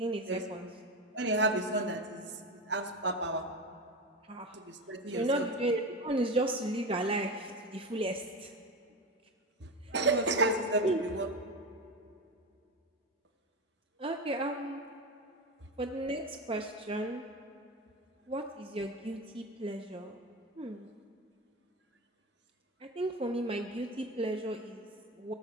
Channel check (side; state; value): both; normal; correlation 0.20